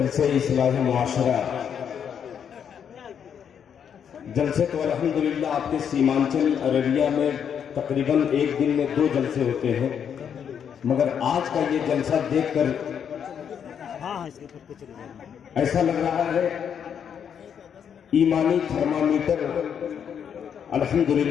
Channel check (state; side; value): quieter; right; 8.0 dB